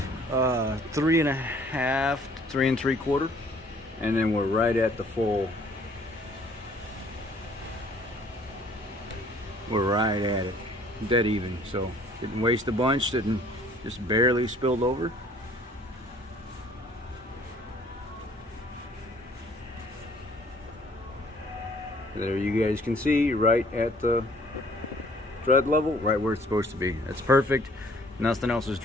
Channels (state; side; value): normal; both; correlation 0.58